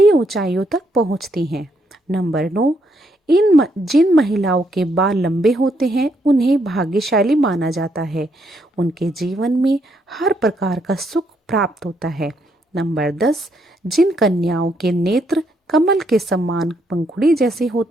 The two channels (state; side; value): normal; both; correlation 0.74